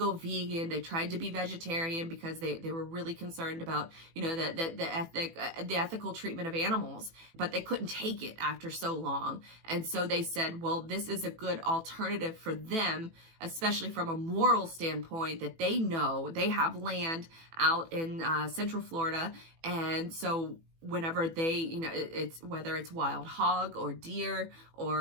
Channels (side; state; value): left; late; 18 ms